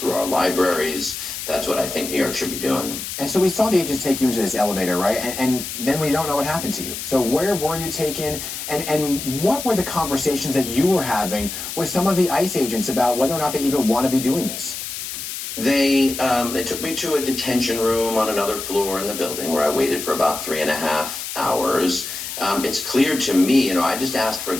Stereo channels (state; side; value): noise; left; hiss, 7 dB below the sound